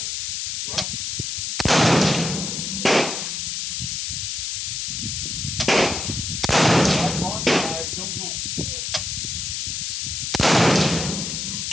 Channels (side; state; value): left; noise; hiss, 3 dB below the sound